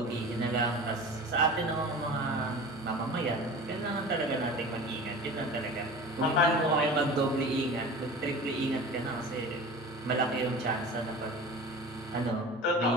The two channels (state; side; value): normal; both; correlation 0.36